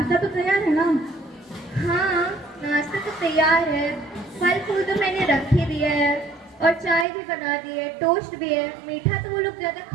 तो तैयार है ना? हाँ, नाश्ता तो तैयार है। फल फूल तो मैंने रख ही दिया है और चाय भी बना दी है, टोस्ट भी है। मीठा तो वो लोग ज्यादा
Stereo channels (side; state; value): left; drops out; at 7.1 s